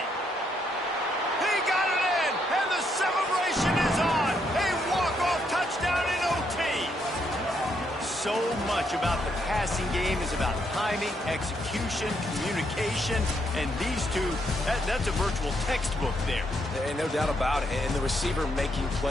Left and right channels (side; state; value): both; normal; correlation 0.75